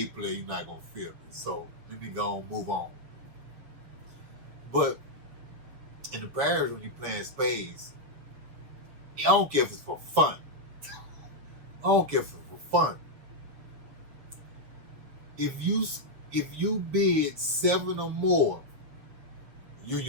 player, you're not going to feel me. So let me go and move on. But in the parish, when you're playing you don't care if it's for fun. I don't care if it's for fun. If you bid 7 or more, you and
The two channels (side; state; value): left; late; 7.2 ms